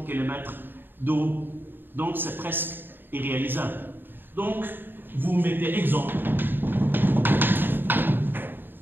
km d'eau. Donc, c'est presque irréalisable. Donc, vous mettez exemple.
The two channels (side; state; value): left; late; 0.095 ms